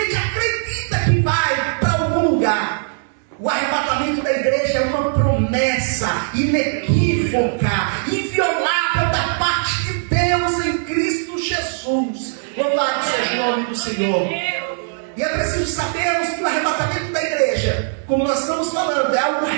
acredita que vai para algum lugar. O arrebatamento da igreja é uma promessa inequívoca, inviolável da parte de Deus em Cristo Jesus. Louvado seja o nome do Senhor. E é preciso sabermos que o arrebatamento da igreja, como nós estamos falando, é algo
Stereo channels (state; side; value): silent; left; 65 dB below the other